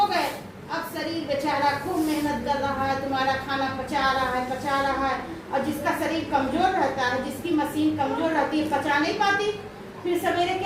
गए। अब शरीर बेचारा खूब मेहनत कर रहा है, तुम्हारा खाना पचा रहा है। और जिसका शरीर कमजोर रहता है, जिसकी मशीन कमजोर रहती है, पचा नहीं पाती, फिर सवेरे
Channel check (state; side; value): identical; both; correlation 1.00